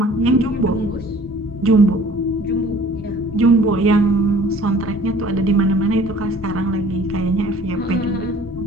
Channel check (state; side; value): normal; both; correlation 0.51